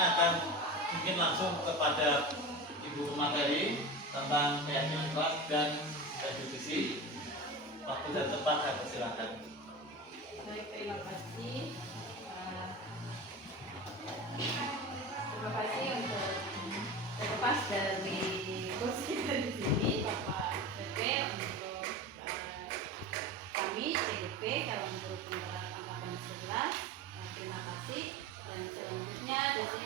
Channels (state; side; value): normal; both; correlation 0.29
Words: akan mungkin langsung kepada Ibu materi tentang keyakinan kelas dan restitusi. Waktu dan tempat saya persilakan. Baik, terima kasih. Terima kasih untuk terlepas dari kursi kita di sini, Bapak PP, untuk kami CDP calon guru penggerak angkatan 11. Terima kasih. Dan selanjutnya di